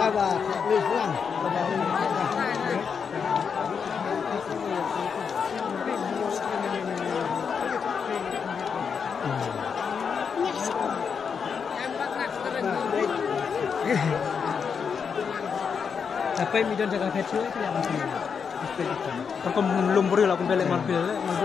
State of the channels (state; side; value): quieter; right; 6.3 dB